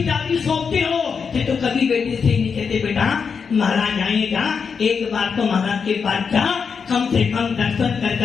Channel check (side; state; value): right; quieter; 5.9 dB